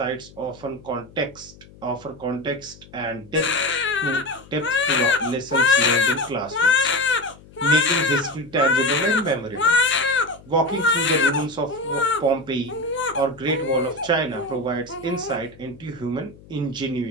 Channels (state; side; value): noise; left; hum, 23 dB below the sound